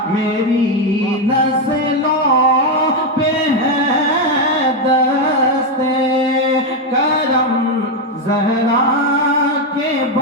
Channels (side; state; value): both; normal; correlation 0.06